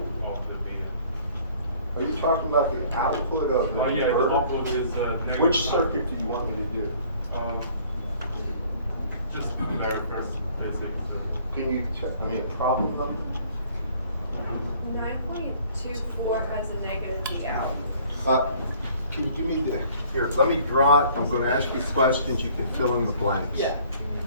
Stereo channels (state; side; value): inverted; both; correlation -0.56